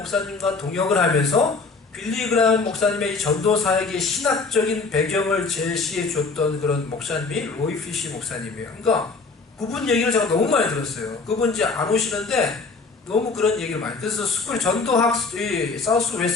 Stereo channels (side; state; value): right; quieter; 4.2 dB